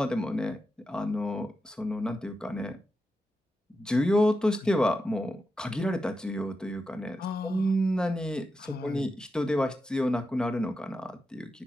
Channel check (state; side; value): normal; both; correlation 0.88